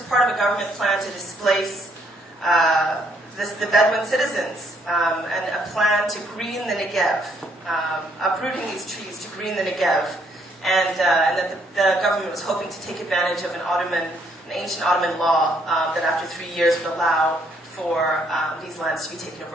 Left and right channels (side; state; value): both; normal; correlation 0.69